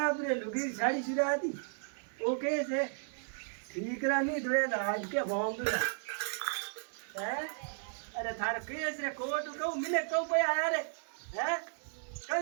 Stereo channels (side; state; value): left; silent; digital silence